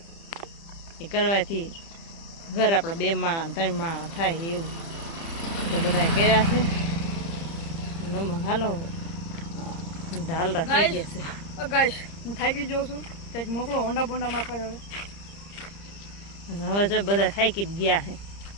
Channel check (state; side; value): late; right; 30 ms